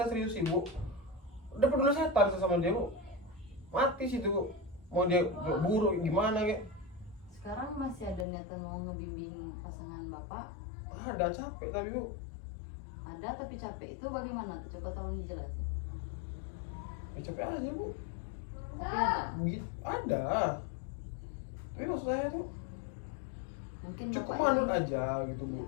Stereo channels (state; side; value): drops out; right; at 8.2 s